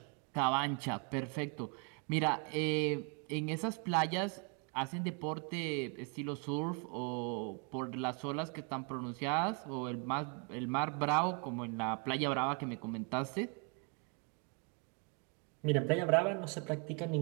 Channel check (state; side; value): quieter; left; 34.4 dB